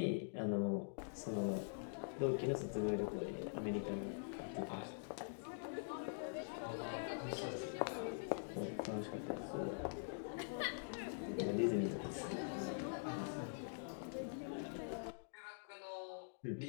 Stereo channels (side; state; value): right; silent; digital silence